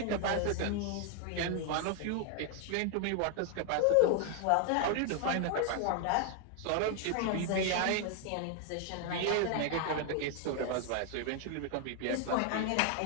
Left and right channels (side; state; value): both; different; correlation 0.00